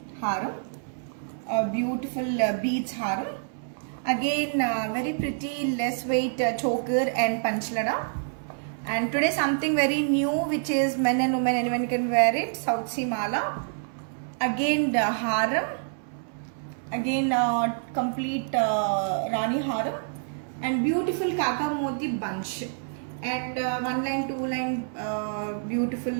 haram, a beautiful beads haram. Again, very pretty less weight choker and panchlada. And today something very new, which is men and women, anyone can wear it. South Sea mala. Again, the haram. Again, complete Rani haram. And beautiful kaka moti bunch. And one line, two line, beautiful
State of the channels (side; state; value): left; silent; 60 dB below the other